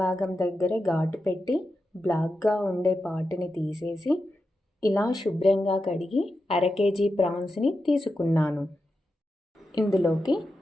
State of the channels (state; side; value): normal; both; correlation 0.89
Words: భాగం దగ్గర ఘాటు పెట్టి బ్లాక్గా ఉండే పాటుని తీసేసి ఇలా శుభ్రంగా కడిగి అర కేజీ ప్రాన్స్ని తీసుకున్నాను. ఇందులోకి